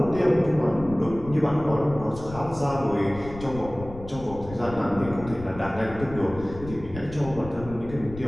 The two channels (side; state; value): left; noise; rumble, 14 dB below the sound